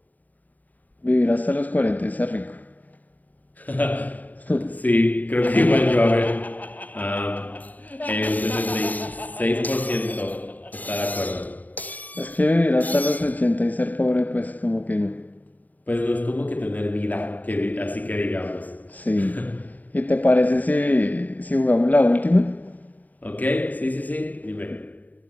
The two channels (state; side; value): late; right; 0.079 ms